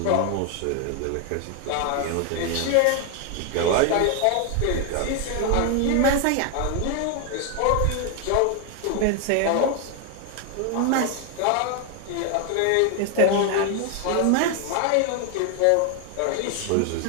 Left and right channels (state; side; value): different; both; correlation 0.01